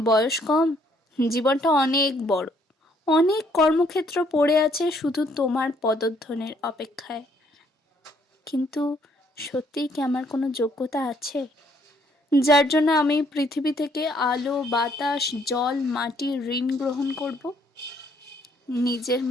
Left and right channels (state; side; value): normal; both; correlation 0.67